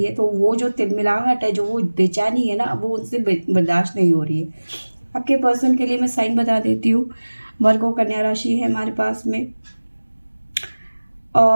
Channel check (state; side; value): inverted; both; correlation -1.00